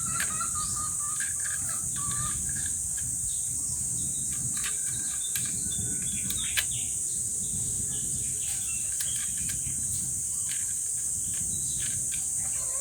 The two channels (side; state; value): both; identical; correlation 1.00